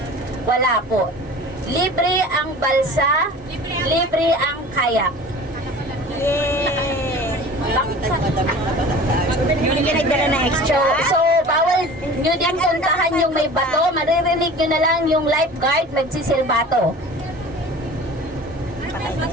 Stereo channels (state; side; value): normal; both; correlation 0.40